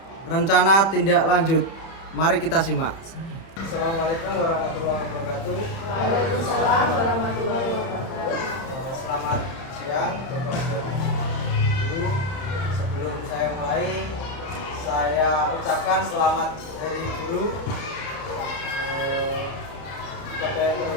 rencana tindak lanjut. Mari kita simak. Assalamualaikum warahmatullahi wabarakatuh. Waalaikumsalam warahmatullahi wabarakatuh. Selamat siang Bapak dan Ibu. Sebelum saya mulai, saya ucapkan selamat Hari Guru kepada yang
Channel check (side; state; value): right; late; 30 ms